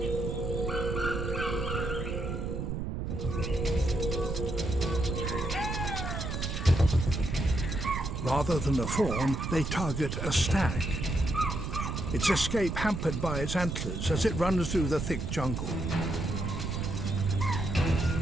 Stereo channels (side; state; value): right; noise; rumble, 3 dB below the sound